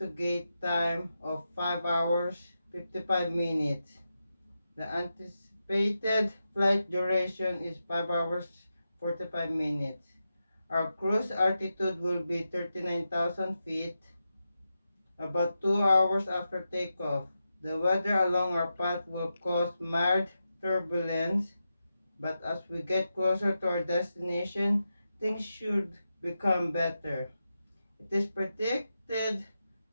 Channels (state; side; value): inverted; both; correlation -0.89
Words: time of 5 hours 55 minutes. The anticipated flight duration is 5 hours 45 minutes. Our cruise altitude will be 39,000 feet, about 2 hours after takeoff. The weather along our path will cause mild turbulence, but as we get closer to our destination, things should become better. It is predicted